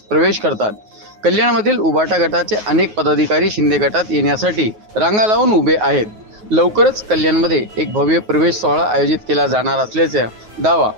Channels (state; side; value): late; left; 9.4 ms